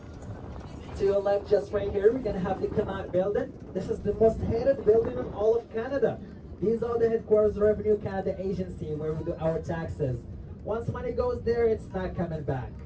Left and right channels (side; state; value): both; identical; correlation 1.00